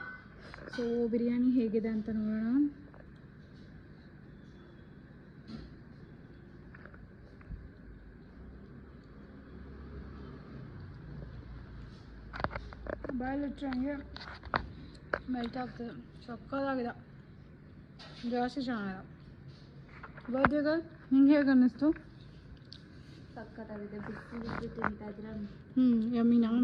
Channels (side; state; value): both; identical; correlation 1.00